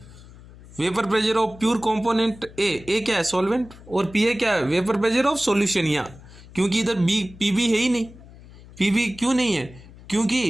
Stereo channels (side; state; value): left; noise; hum, 20 dB below the sound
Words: vapour pressure of pure component ए क्या है सॉल्वेंट, और पी ए क्या है, वेपर प्रेशर ऑफ सॉल्यूशन। यहाँ क्योंकि इधर बी पी बी है ही नहीं, पी बी क्यों नहीं है,